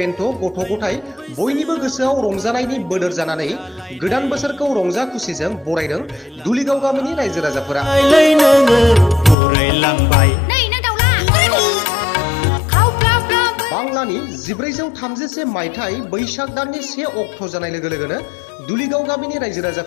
गथ' गथाय बयनिबो गोसोआव रंजानायनि बोदोर जानानै गोदान बोसोरखौ रंजा खुसिजों बरायदों दुलिगाव गामिनि रायजो राजाफोरा। बांलानि 1431 मायथाइ बैसाग दाननि 1 अक्ट' जानाय लोगो लोगोनो दुलिगाव गामिनि रायजो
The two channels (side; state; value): right; drops out; at 9.3 s